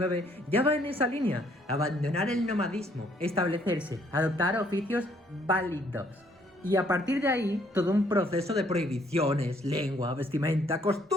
ya va en esa línea. Abandonar el nomadismo, establecerse, adoptar oficios válidos. Y a partir de ahí, todo un proceso de prohibiciones, lengua, vestimenta,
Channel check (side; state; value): both; normal; correlation 0.66